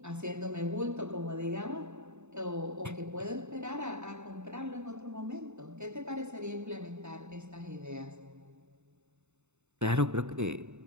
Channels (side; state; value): left; late; 0.82 ms